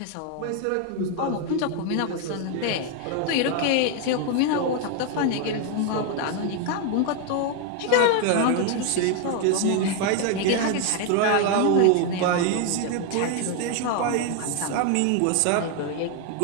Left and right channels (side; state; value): both; different; correlation 0.01